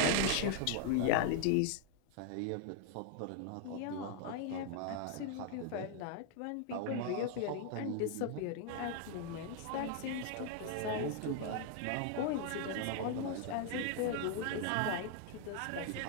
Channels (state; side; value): different; both; correlation 0.00